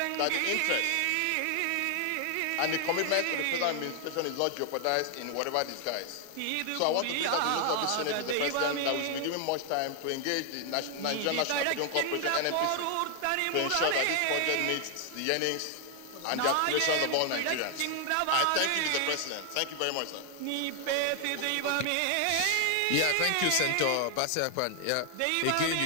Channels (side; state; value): both; different; correlation 0.00